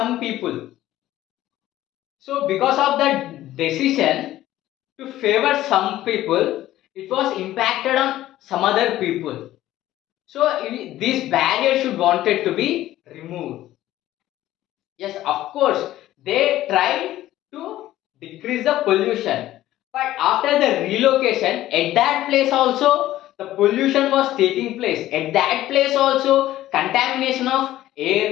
people. So because of that decision to favor some people, it was impacted on some other people. So this barrier should wanted to be removed. Yes, of course, they tried to decrease the pollution, but after the relocation, at that place also the pollution was taking place. At that place also, contamination of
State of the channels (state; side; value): quieter; right; 14.5 dB